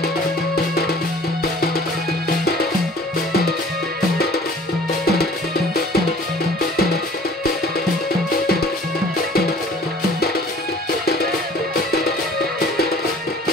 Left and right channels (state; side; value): normal; both; correlation 0.50